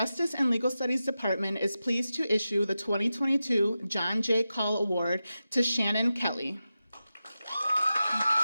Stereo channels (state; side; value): inverted; both; correlation -0.92